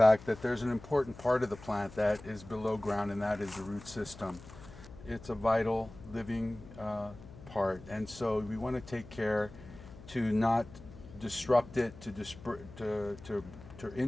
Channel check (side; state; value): left; noise; hum, 17 dB below the sound